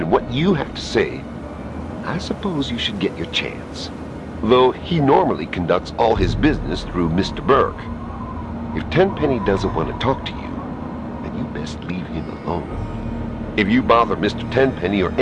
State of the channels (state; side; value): identical; both; correlation 1.00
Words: what you have to say, I suppose you should get your chance. Though he normally conducts all his business through Mr. Burke. If Tenpenny doesn't want to talk to you, then you best leave him alone. If you bother Mr. Tenpenny or